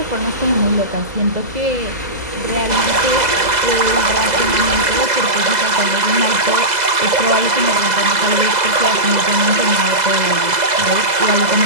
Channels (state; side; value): late; left; 2.0 ms